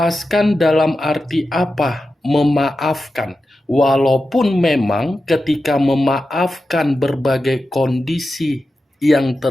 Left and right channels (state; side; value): normal; both; correlation 0.91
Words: dalam arti apa? Memaafkan. Walaupun memang ketika memaafkan berbagai kondisi yang